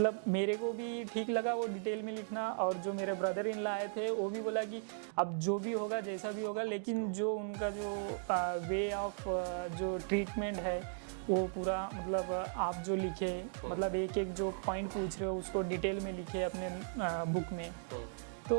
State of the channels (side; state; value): left; silent; digital silence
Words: मेरे को भी ठीक लगा वो डिटेल में लिखना, और जो मेरे ब्रदर इन लॉ आए थे वो भी बोला कि अब जो भी होगा जैसा भी होगा, लेकिन जो उनका जो वे ऑफ जो ट्रीटमेंट है वो पूरा मतलब आप जो लिखे, मतलब एक जो पॉइंट पूछ रहे हो उसको डिटेल में लिखे अपने बुक में।